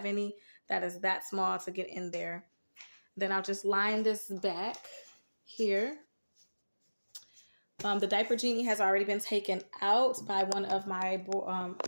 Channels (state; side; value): inverted; both; correlation -1.00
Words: any that is that small to get in there. Then I'll just line this back here. The diaper genie has already been taken out by one of my